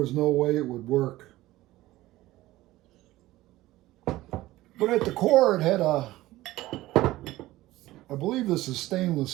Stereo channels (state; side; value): quieter; left; 17.0 dB